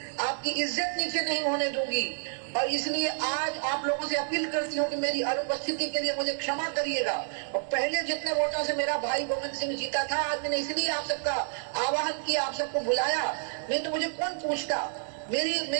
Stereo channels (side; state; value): left; silent; digital silence